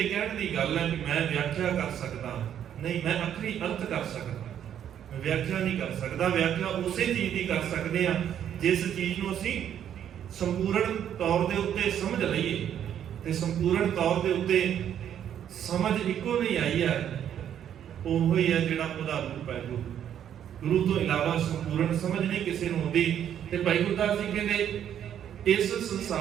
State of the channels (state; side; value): quieter; left; 9.8 dB